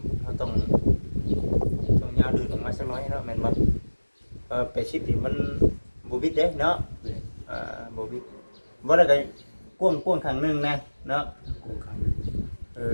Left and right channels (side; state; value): both; inverted; correlation -1.00